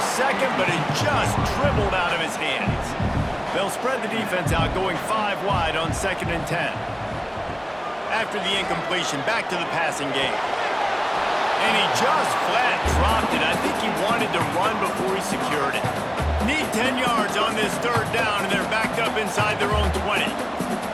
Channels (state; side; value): identical; both; correlation 1.00